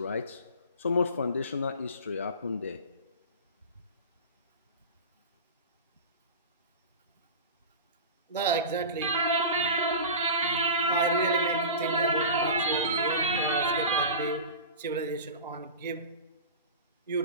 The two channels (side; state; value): both; inverted; correlation -0.32